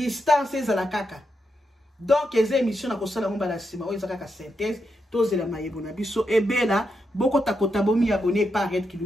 ezala kaka donc les émissions na kosala ngomba la sima oyo ezaka ka synthèse tozela mayebo na biso ebela boko takota bomi abonné par Red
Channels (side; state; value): both; normal; correlation 0.84